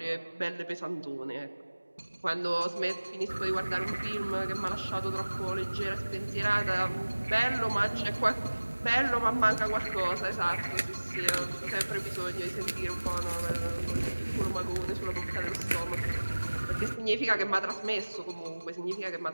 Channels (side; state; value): both; inverted; correlation -1.00